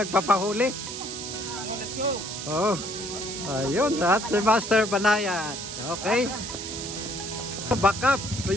Let's go. Oh. Ayun, at si Master Banayat. Okay. Back up.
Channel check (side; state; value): right; noise; hiss, 7 dB below the sound